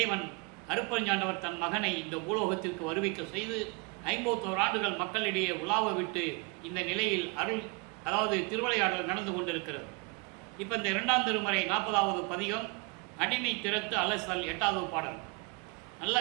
அருட்பெருஞ்சாண்டவர் தன் மகனை இந்த பூலோகத்திற்கு வருவிக்க செய்து 51 ஆண்டுகள் மக்களிடையே உலாவ விட்டு இந்த நிலையில் அதாவது திருவிளையாடல் நடந்து கொண்டிருக்கிறது. இப்போ இந்த 2ஆம் திருமுறை 40வது பதிகம் அடிமை திறத்து அலசல் 8வது பாடல். நல்லா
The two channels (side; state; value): left; quieter; 30.7 dB